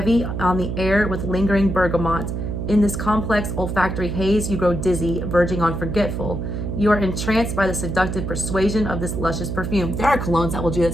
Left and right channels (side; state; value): right; noise; hum, 4 dB below the sound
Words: on the air with lingering bergamot. In this complex olfactory haze, you grow dizzy, verging on forgetful. You are entranced by the seductive persuasion of this luscious perfume. There are colognes that will do that